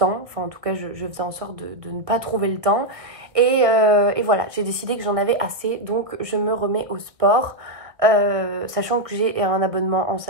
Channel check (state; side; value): late; left; 1.4 ms